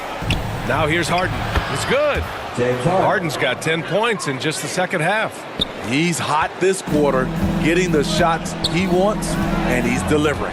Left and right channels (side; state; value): both; identical; correlation 1.00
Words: Now here's Harden. It's good. James Harden. Harden's got 10 points in just the second half. He's hot this quarter, getting the shots he wants, and he's delivering.